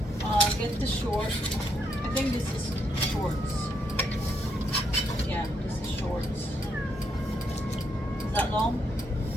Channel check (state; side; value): normal; both; correlation 0.76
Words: Get the short. I think this is shorts. Yeah, this is shorts. Is that long?